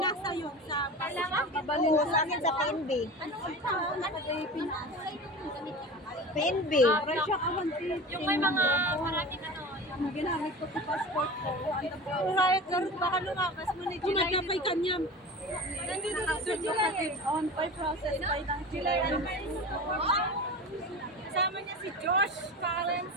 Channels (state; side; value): normal; both; correlation 0.32